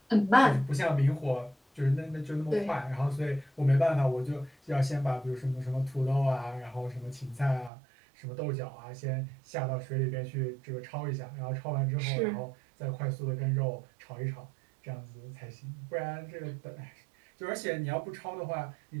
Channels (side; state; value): left; drops out; at 7.7 s